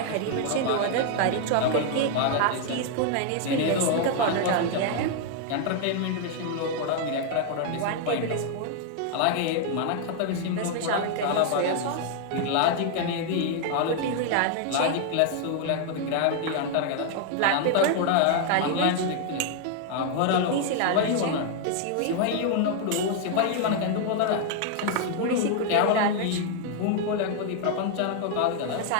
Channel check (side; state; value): both; different; correlation 0.00